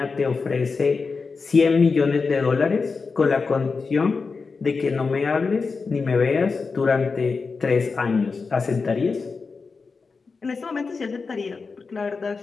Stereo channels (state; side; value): quieter; right; 4.6 dB